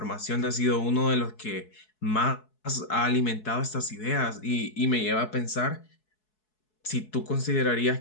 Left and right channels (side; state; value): right; late; 4.7 ms